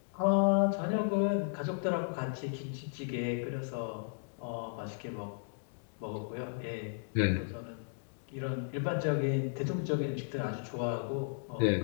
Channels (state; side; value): silent; right; digital silence